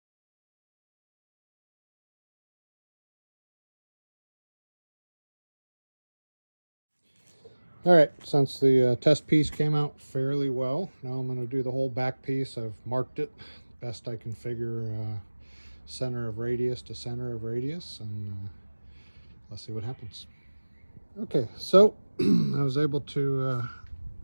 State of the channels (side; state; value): both; inverted; correlation -1.00